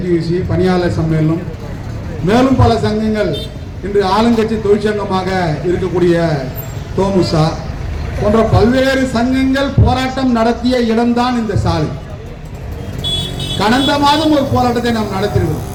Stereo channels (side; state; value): both; identical; correlation 1.00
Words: பணியாளர் சம்மேளனம் மேலும் பல சங்கங்கள் இன்று ஆளுங்கட்சி தொழிற்சங்கமாக இருக்கக்கூடிய தோமுசா போன்ற பல்வேறு சங்கங்கள் போராட்டம் நடத்திய இடம்தான் இந்த சாலை. கடந்த மாதம் ஒரு போராட்டத்தை நாம் நடத்திருக்கிறோம்.